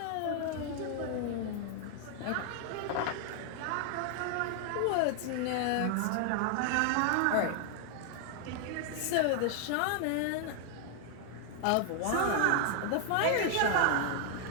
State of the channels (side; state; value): both; different; correlation 0.00